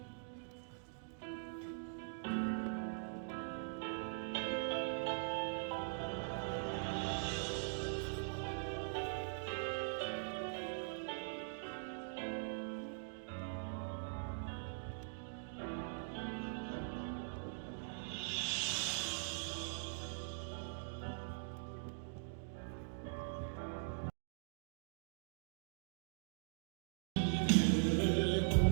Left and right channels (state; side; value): silent; left; digital silence